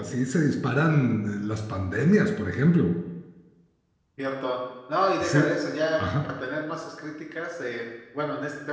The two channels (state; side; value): identical; both; correlation 1.00